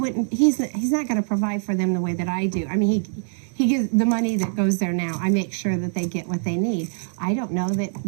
he's not going to provide for them the way that I do. I mean, he gives the money that goes there now. I make sure that they get what they need. I don't know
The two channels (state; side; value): silent; left; digital silence